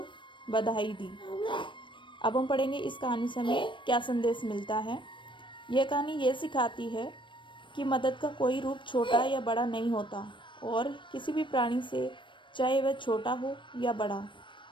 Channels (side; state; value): right; late; 0.24 ms